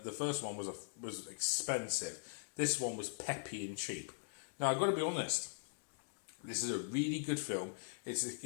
the first one was expensive, this one was peppy and cheap. Now, I've got to be honest, this is a really good film.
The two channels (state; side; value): silent; right; digital silence